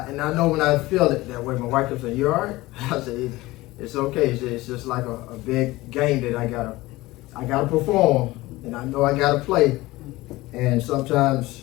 I know when I feel it that way, my wife kept saying, you all right? I said, it's okay. It's just like a big game that I gotta perform, and I know I gotta play. And sometimes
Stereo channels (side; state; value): right; quieter; 19.3 dB